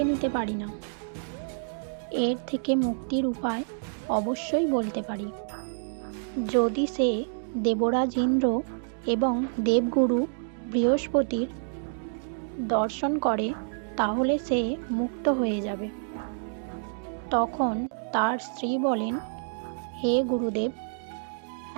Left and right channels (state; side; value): silent; left; digital silence